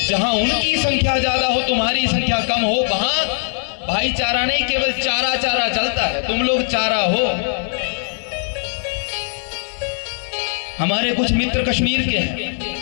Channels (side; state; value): right; silent; 66 dB below the other